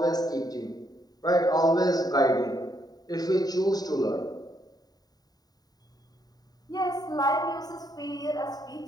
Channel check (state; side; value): late; right; 0.18 ms